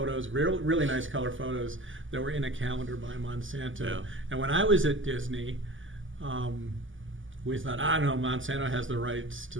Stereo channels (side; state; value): left; late; 0.57 ms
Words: really nice color photos that were in a calendar by Monsanto. Yeah. And when I was at Disney, we thought, no, Monsanto has the rights to